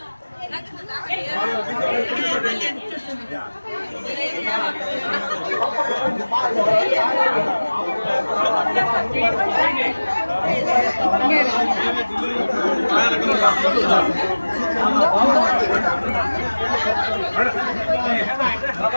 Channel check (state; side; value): inverted; both; correlation -1.00